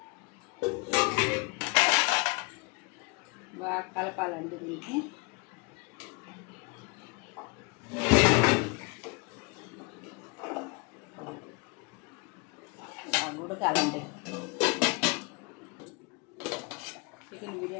బాగా కలపాలండి దీనికి. బాగా ఉడకాలండి. చికెన్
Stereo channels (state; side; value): quieter; right; 30.7 dB